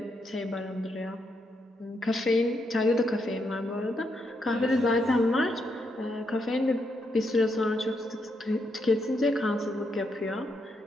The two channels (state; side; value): normal; both; correlation 0.80